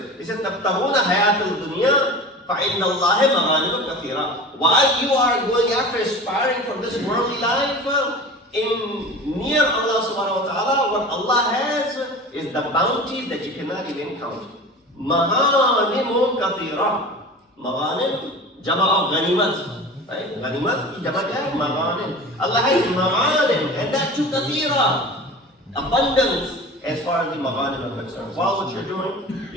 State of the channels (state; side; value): normal; both; correlation 0.35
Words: It says, تَبْتَغُونَ حَيَاةَ الدُّنْيَا فَإِنَّ اللَّهِ مَغَانِمُ كَثِيرًا. While you are going after aspiring for this worldly life, in near Allah subhanahu wa ta'ala, what Allah has is the bounties that you cannot even count. Maghanimun kathira. Maghanim, jama of ganimat. Right? Ganimat ki jama kya hai? Maghanim. Allah has maghanim, and that too kathira. Abundance as far as the maghanim are concerned. While what you're doing,